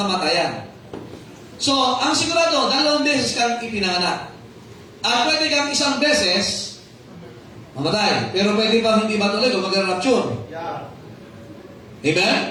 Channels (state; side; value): identical; both; correlation 1.00